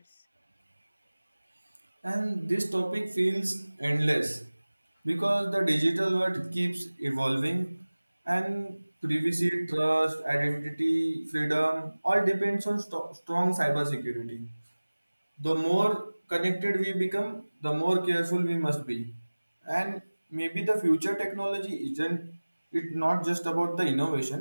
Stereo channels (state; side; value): inverted; both; correlation -1.00